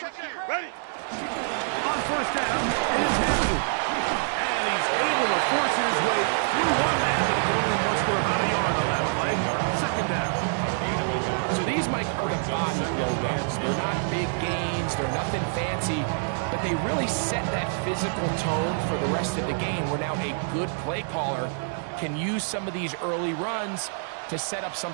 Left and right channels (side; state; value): left; silent; digital silence